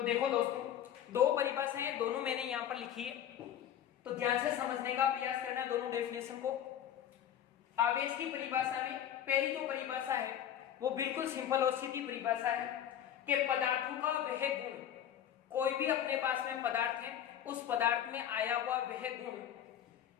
देखो दोस्तों, दो परिभाषाएं दोनों मैंने यहां पर लिखी है, तो ध्यान से समझने का प्रयास करना दोनों डेफिनेशन को। आवेश की परिभाषा में पहली जो परिभाषा है वो बिल्कुल सिंपल और सीधी परिभाषा है कि पदार्थों का वह गुण, कोई भी अपने पास में पदार्थ है उस पदार्थ में आया हुआ वह गुण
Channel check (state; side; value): quieter; right; 10.2 dB